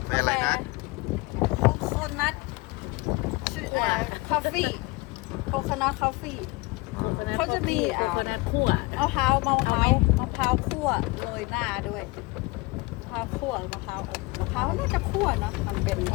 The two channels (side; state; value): right; quieter; 23.5 dB